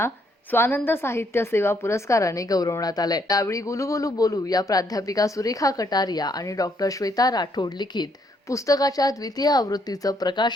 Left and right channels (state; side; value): normal; both; correlation 0.71